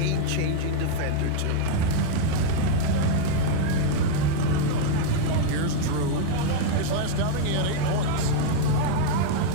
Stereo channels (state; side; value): different; both; correlation -0.01